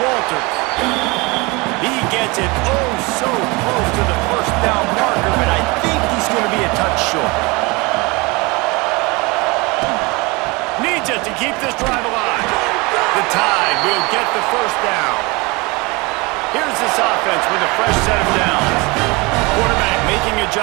He gets it oh so close to the first down marker, but I think he's going to be a touch short. Needs it to keep this drive alive. The Tide will get the first down. Here's this offense with a fresh set of downs. Quarterback making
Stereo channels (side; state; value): left; quieter; 25.7 dB